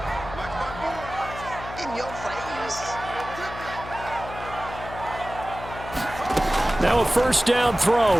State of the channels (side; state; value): left; noise; hum, 12 dB below the sound